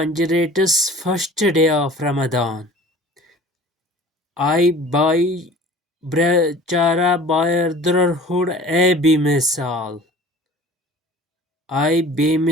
first day of Ramadan. I by Brachara brotherhood a bemisal. I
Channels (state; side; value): normal; both; correlation 0.44